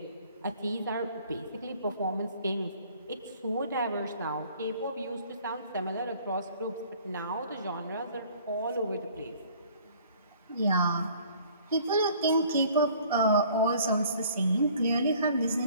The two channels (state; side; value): inverted; both; correlation -0.54